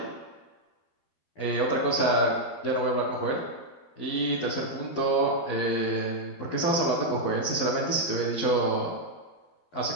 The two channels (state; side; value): late; right; 12 ms